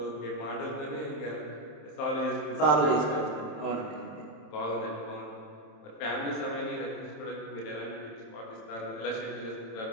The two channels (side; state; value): right; late; 27 ms